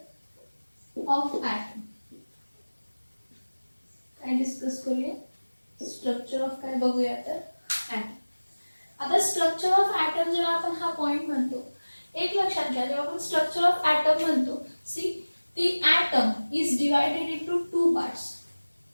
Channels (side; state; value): both; inverted; correlation -1.00